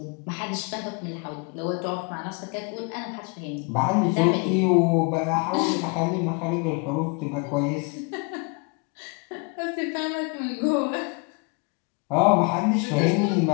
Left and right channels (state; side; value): quieter; right; 32.8 dB